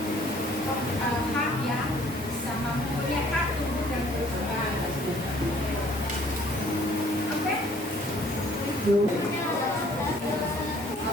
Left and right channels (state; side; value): normal; both; correlation 0.58